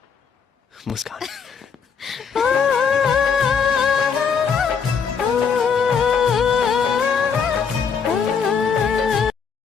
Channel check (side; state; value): right; quieter; 6.3 dB